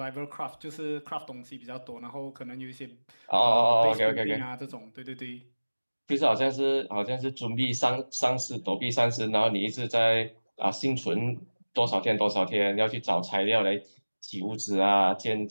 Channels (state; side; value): inverted; both; correlation -1.00